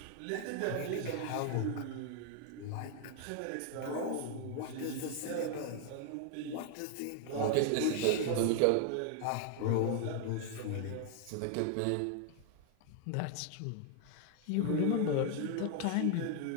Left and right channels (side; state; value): both; different; correlation 0.00